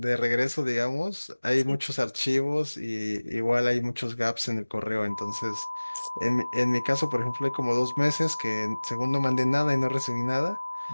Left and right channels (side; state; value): both; inverted; correlation -1.00